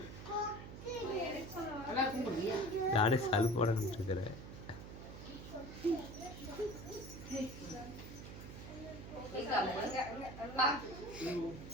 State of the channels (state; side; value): noise; right; hum, 11 dB below the sound